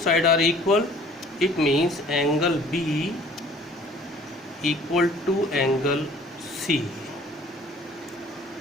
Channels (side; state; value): both; normal; correlation 0.53